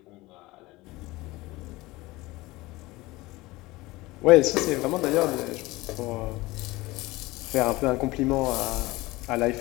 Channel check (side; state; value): right; quieter; 20.5 dB